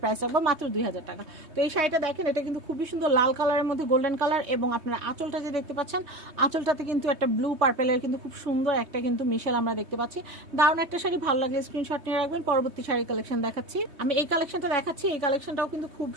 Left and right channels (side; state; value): left; late; 3.2 ms